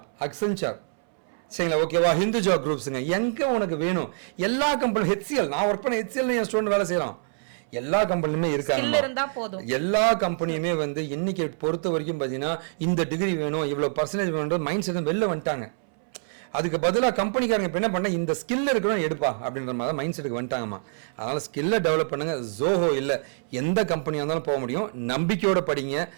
Accenture, சரிங்களா? ஓகேவா? ஹிந்துஜா குரூப்ஸுங்க. எங்கே உனக்கு வேணும் எல்லா கம்பெனி, ஹெச்சிஎல், நான் ஒர்க் பண்ண ஹெச்சிஎல் என் ஸ்டூடெண்ட் வேலை செய்கிறான். எல்லா கம்பெனிலுமே இருக்காங்க. எல்லா கம்பெனியுமே வந்து இன்னைக்கு பொறுத்த வரைக்கும் பார்த்தீங்கன்னா இந்த டிகிரி வேணும், இவ்வளோ பர்சன்டேஜ் வேணும் மைண்ட் செட் வெளில வந்துட்டாங்க. அதுக்கு பதிலாக கம்பெனிக்காரங்க இப்போ என்ன பண்ண, இந்த ஸ்கில் இருக்கணும் எடுப்பா அப்படின்ற மாதிரி மைண்ட் செட்டுக்கு வந்துட்டாங்கம்மா. அதனால் ஸ்கில்லை டெவலப் பண்ணுங்க. ஜோஹோ இல்லை, எந்த கம்பெனியாக இருந்தாலும் போக முடியும். நம்பிக்கையோட படிங்க.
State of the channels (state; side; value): silent; left; 61 dB below the other